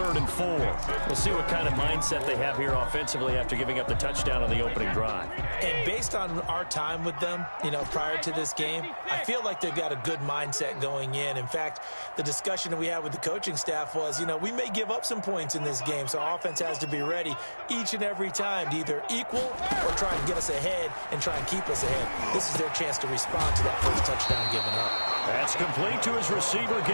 and 4. We'll see what kind of mindset they have here offensively after giving up the touchdown on the opening drive. And based on our time with them, prior to this game, I feel like they've got a good mindset going in. In fact, the discussion that we had with the coaching staff was, we may give up some points in this game, so our offense has to be ready each and every time to either equal or try and get us ahead and try and keep us ahead. This is their chance to respond to that first touchdown given up. That's complete to his receiver,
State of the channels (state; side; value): inverted; both; correlation -1.00